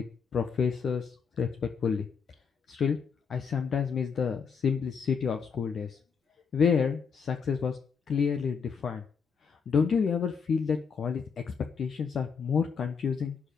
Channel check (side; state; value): right; quieter; 6.1 dB